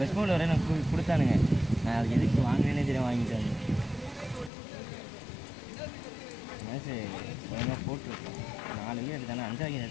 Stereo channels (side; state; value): right; drops out; at 4.5 s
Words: பவுலர் வரை நான் கொடுத்தானுங்க. நான் அது எதுக்கு வாங்கினேனே தெரியும் வாங்கிட்டாங்க. மேட்ச்சு ஒழுங்காக போட்டுருக்கேன் 4 விக்கெட் எடுத்தானே 5 விக்கெட்